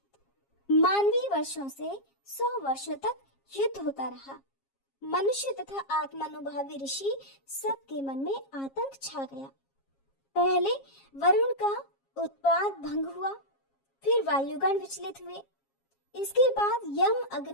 मानवीय वर्षों से 100 वर्षों तक युद्ध होता रहा। मनुष्य तथा आत्मानुभावी ऋषि सबके मन में आतंक छा गया। पहले वरुण का उत्पात भंग हुआ, फिर वायुगण विचलित हुए। इसके बाद यम,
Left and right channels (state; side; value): late; right; 7.4 ms